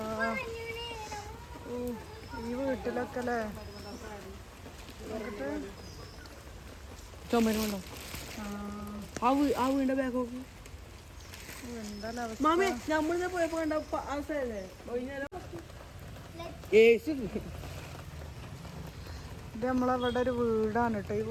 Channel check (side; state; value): both; identical; correlation 1.00